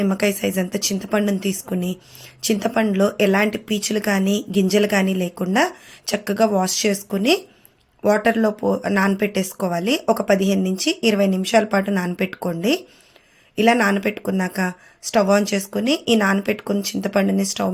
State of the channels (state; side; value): identical; both; correlation 1.00